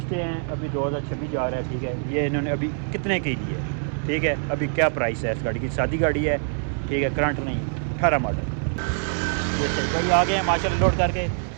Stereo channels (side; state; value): left; silent; 62 dB below the other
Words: हैं अभी 2026 जा रहा है, ठीक है। ये इन्होंने अभी कितने की ली है, ठीक है। अभी क्या प्राइस है इस गाड़ी की, सादी गाड़ी है, ठीक है, करंट नहीं, 18 मॉडल। भाई आ गए हैं माशाल्लाह लोड करके।